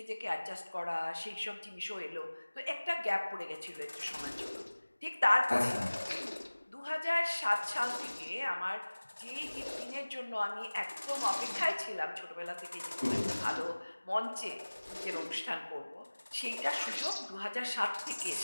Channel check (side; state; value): both; inverted; correlation -1.00